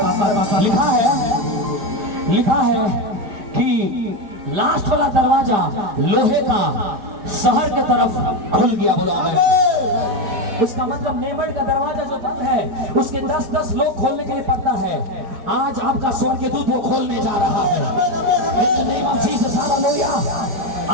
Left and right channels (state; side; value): late; left; 5.0 ms